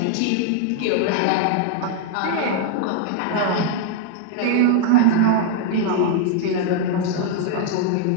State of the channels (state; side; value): different; both; correlation 0.00